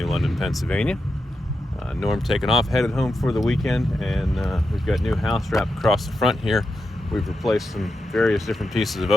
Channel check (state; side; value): normal; both; correlation 0.87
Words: London, Pennsylvania. Norm taking off, headed home for the weekend, and we've got new house wrap across the front here. We've replaced some various different pieces of